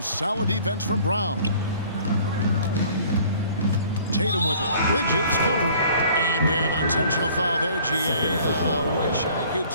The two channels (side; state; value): both; inverted; correlation -0.53